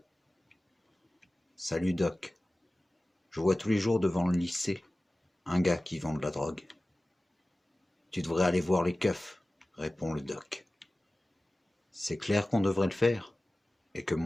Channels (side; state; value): both; normal; correlation 0.96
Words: Salut Doc. Je vois tous les jours devant le lycée un gars qui vend de la drogue. Tu devrais aller voir les keufs, répond le doc. C'est clair qu'on devrait le faire, et que